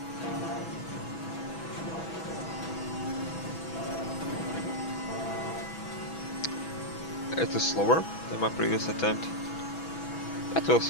It is slower than my previous attempt. But we'll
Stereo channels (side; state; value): right; late; 6.1 ms